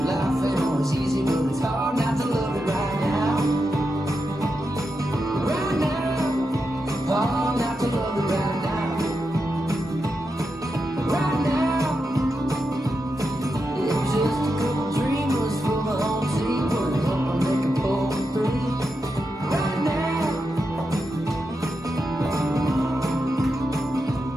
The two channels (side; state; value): both; normal; correlation 0.87